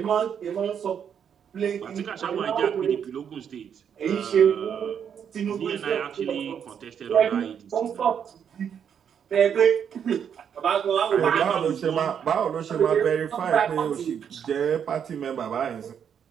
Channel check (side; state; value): left; quieter; 8.0 dB